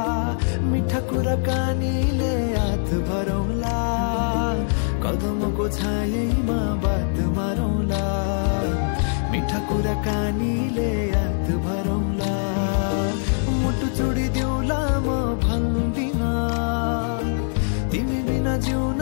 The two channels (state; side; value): silent; right; digital silence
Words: मिठा कुराकानीले हात भरौला कदमको छायैमा बात मारौला मिठा कुराकानीले हात भरौला मुटु चुडिदिउला म भन्दिन तिमी बिना जिउन